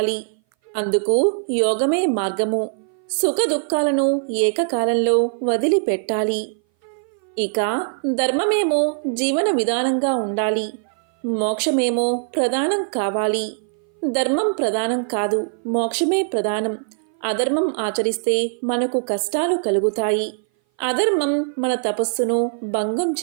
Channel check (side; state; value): left; silent; 59 dB below the other